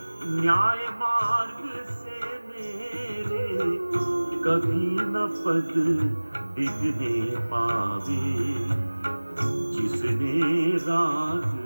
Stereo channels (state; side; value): inverted; both; correlation -1.00